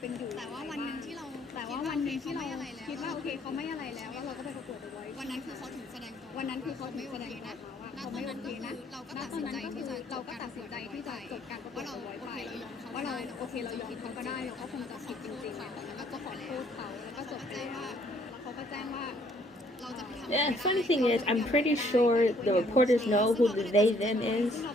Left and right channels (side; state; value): both; normal; correlation 0.64